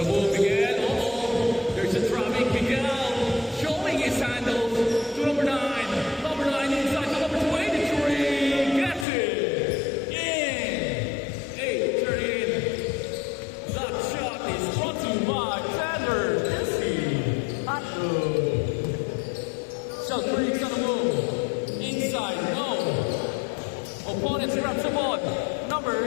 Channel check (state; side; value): drops out; right; at 9.1 s